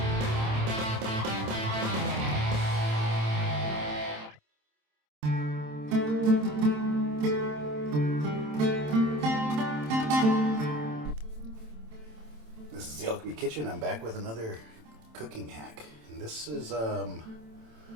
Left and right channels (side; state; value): left; late; 27 ms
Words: This is the Alchemy Kitchen. I'm back with another cooking hack, and this is